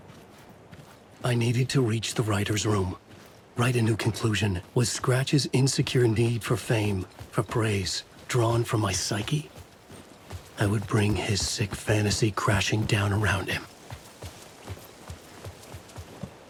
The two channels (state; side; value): identical; both; correlation 1.00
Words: I needed to reach the writer's room. Write a new conclusion. Was Scratch's insecure need for fame, for praise, drawn from my psyche? I would bring his sick fantasy crashing down around him.